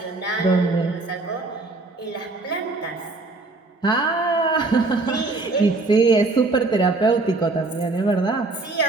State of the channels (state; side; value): quieter; left; 3.3 dB